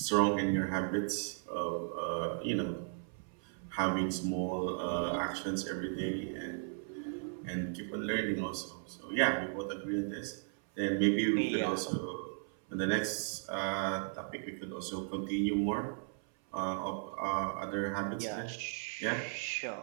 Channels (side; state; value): left; silent; 54 dB below the other